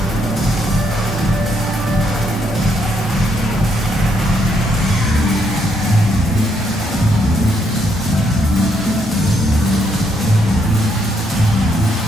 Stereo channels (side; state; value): both; normal; correlation 0.74